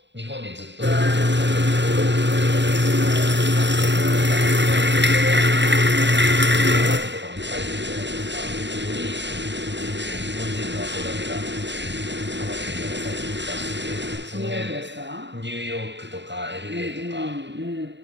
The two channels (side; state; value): left; late; 0.52 ms